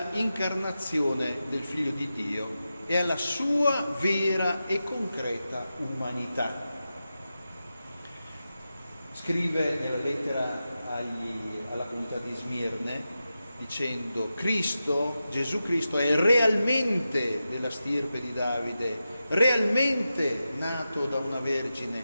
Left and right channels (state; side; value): inverted; both; correlation -0.91